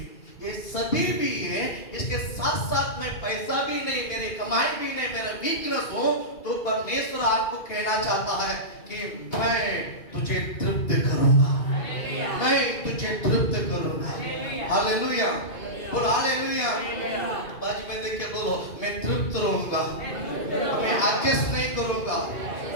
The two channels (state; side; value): late; right; 2.8 ms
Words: ये सभी भी है, इसके साथ साथ में पैसा भी नहीं, मेरी कमाई भी नहीं, मेरा वीकनेस हो, तो परमेश्वर आपको कहना चाहता है कि मैं तुझे तृप्त करूंगा, मैं तुझे तृप्त करूंगा। हालेलुया, बोल हालेलुया। बाजू में देख के बोलो, मैं तृप्त रहूंगा, मैं एडजस्ट नहीं करूंगा।